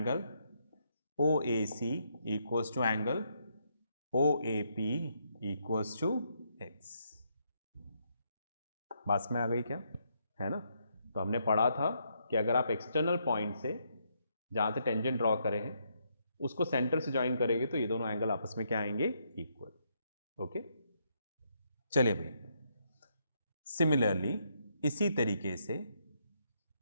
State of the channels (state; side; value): inverted; both; correlation -0.76